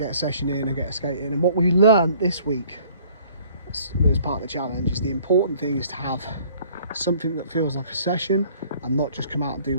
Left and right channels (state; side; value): inverted; both; correlation -0.57